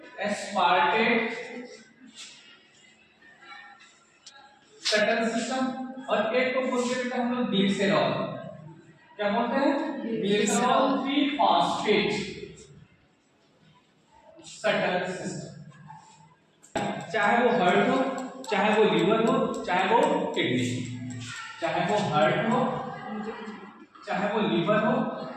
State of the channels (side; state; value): both; identical; correlation 1.00